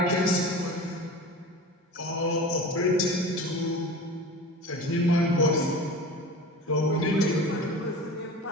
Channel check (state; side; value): normal; both; correlation 0.35